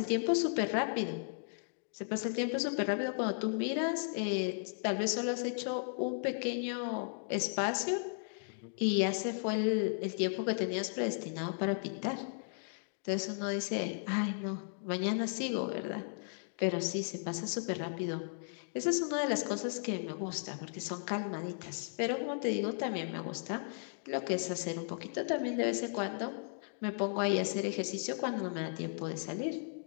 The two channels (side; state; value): right; silent; digital silence